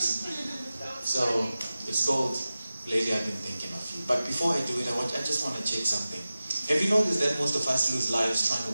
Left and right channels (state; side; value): inverted; both; correlation -0.95